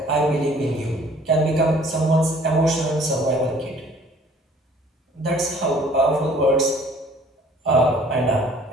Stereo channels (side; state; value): both; normal; correlation 0.55